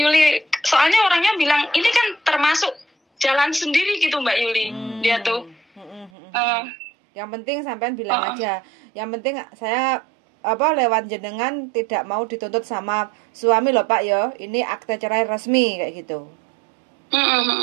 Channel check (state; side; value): drops out; left; at 6.1 s